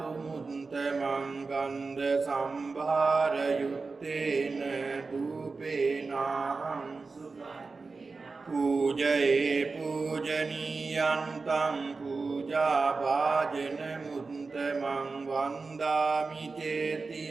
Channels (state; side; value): quieter; left; 4.1 dB